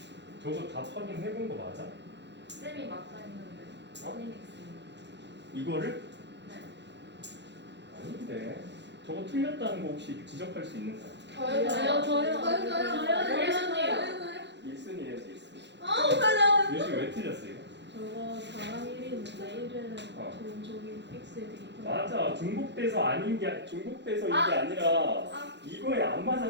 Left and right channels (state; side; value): late; left; 0.51 ms